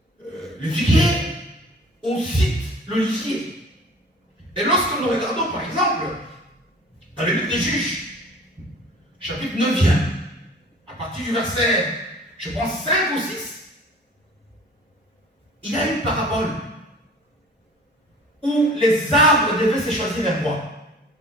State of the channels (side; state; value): both; normal; correlation 0.46